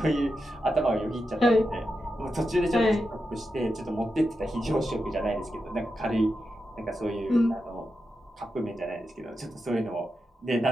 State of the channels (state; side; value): normal; both; correlation 0.88